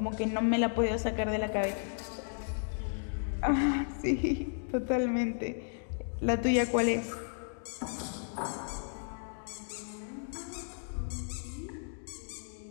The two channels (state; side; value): silent; right; digital silence